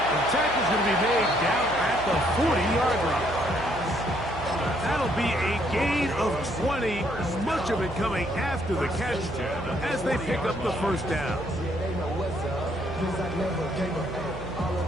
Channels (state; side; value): noise; right; hum, 11 dB below the sound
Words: The tackle's going to be made down at the 40-yard line. That'll be a gain of 20, much of it coming after the catch as they pick up the first down.